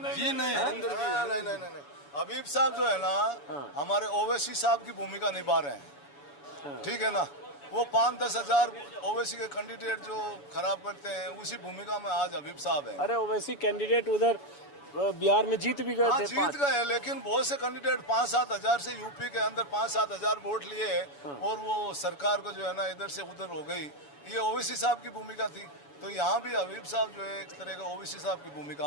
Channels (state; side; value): late; right; 7.0 ms